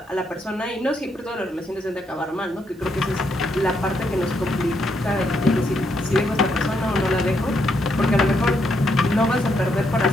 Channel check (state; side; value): normal; both; correlation 0.77